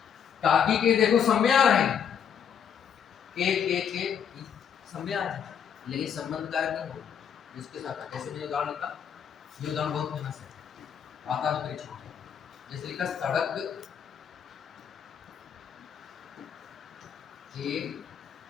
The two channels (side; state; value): right; quieter; 8.0 dB